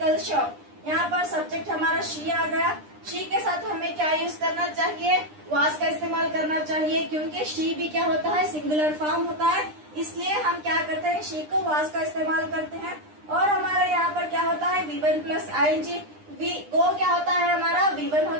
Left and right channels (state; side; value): late; left; 9.9 ms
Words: shop. यहाँ पर सब्जेक्ट हमारा शी आ गया। शी के साथ हमें क्या यूज करना चाहिए, वाज का इस्तेमाल करना चाहिए, क्योंकि शी भी क्या होता है, सिंगुलर फॉर्म होता है, इसलिए हम क्या करते हैं, शी को वाज का इस्तेमाल करते हैं। और हमारा यहाँ पर क्या होता है, V1 प्लस ING। गो क्या होता है हमारा, V1